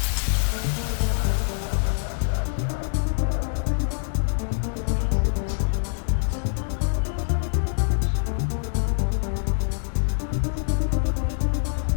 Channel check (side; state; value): right; silent; digital silence